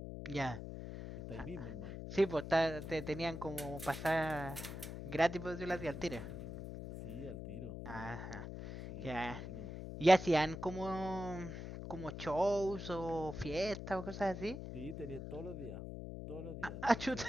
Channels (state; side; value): noise; left; hum, 8 dB below the sound